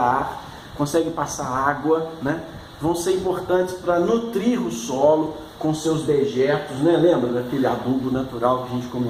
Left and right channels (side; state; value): both; identical; correlation 1.00